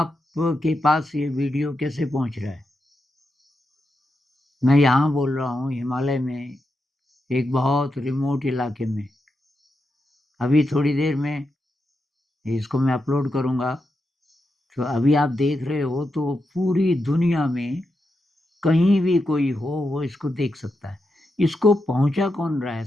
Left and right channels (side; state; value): both; normal; correlation 0.86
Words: पास ये वीडियो कैसे पहुंच रहा है? मैं यहाँ बोल रहा हूँ हिमालय में, एक बहुत रिमोट इलाके में। अभी थोड़ी देर में इसको मैं अपलोड करूँगा, तो अभी आप देख रहे हो तो पूरी दुनिया में कहीं भी कोई हो वो इसको देख सकता है। इसको पहुंचा कौन रहा है